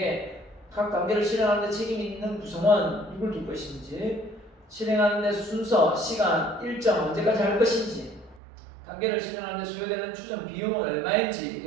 각 단계를 실행하는 데 책임이 있는 구성원, 누굴 둘 것인지, 실행하는 데 순서, 시간, 일정, 언제까지 할 것인지, 단계를 실행하는 데 소요되는 추정 비용은 얼마인지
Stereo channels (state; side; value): drops out; left; at 8.4 s